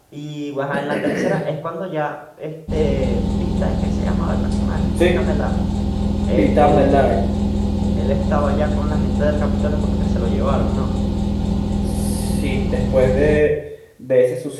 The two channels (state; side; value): identical; both; correlation 1.00